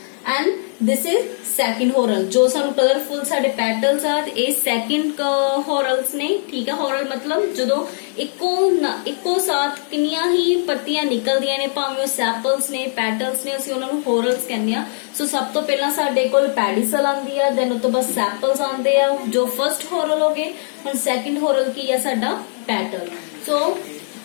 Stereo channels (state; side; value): silent; right; digital silence